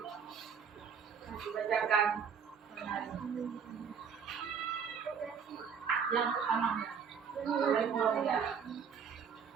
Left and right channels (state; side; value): quieter; left; 6.8 dB